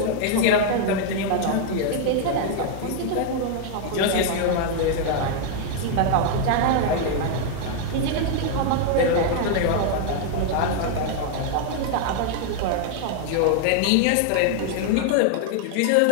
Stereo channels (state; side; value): different; both; correlation 0.00